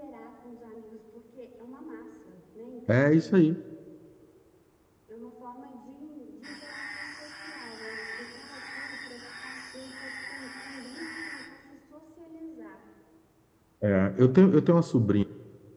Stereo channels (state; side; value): identical; both; correlation 1.00